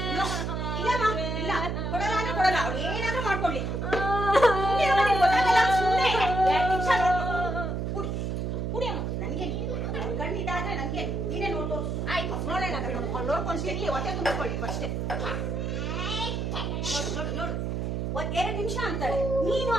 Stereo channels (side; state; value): right; noise; hum, 2 dB below the sound